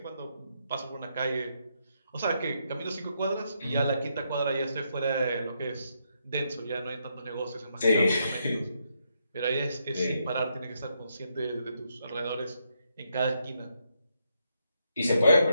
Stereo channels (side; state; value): both; inverted; correlation -0.79